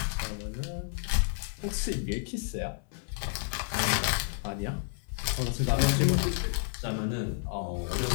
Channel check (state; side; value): silent; right; 56 dB below the other